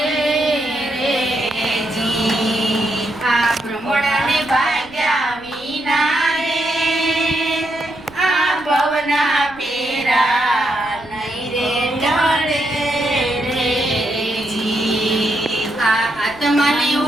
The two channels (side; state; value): right; noise; rumble, 25 dB below the sound